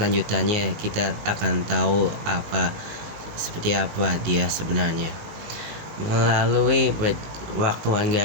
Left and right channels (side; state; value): left; late; 18 ms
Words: kita akan tahu seperti apa dia sebenarnya. Melalui waktuan